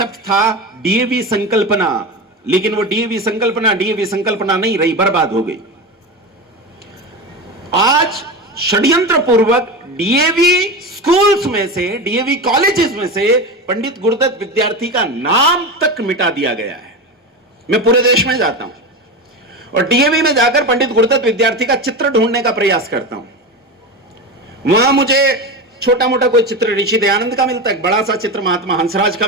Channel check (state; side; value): normal; both; correlation 0.22